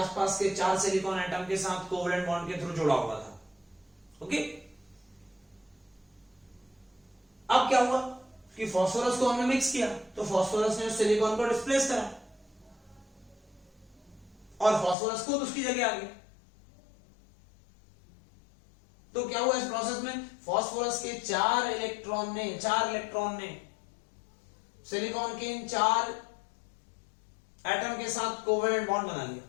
के 4 सिलिकॉन एटम के साथ कोवैलेंट बॉन्ड के थ्रू जुड़ा हुआ था। ओके, अब क्या हुआ कि फॉस्फोरस को हमने मिक्स किया तो फॉस्फोरस ने उस सिलिकॉन को डिस्प्लेस करा और फॉस्फोरस खुद उसकी जगह आ गया। तो क्या हुआ इस प्रोसेस में, फॉस्फोरस के 4 इलेक्ट्रॉन ने सिलिकॉन के इन 4 एटम के साथ कोवैलेंट बॉन्ड बना लिया।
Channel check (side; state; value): right; drops out; at 15.0 s